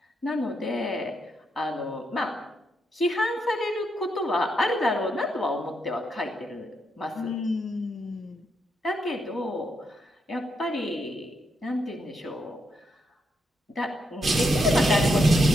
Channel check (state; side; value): normal; both; correlation 0.80